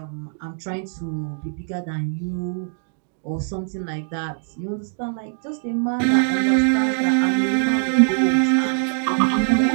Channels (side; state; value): left; silent; 64 dB below the other